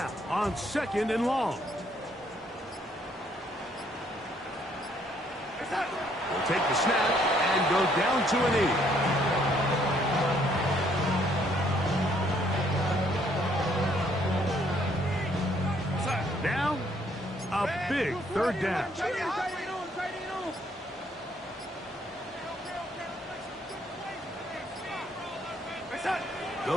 on second and long. We'll take the snap and go down to a knee. Now, a big third down.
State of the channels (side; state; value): both; normal; correlation 0.67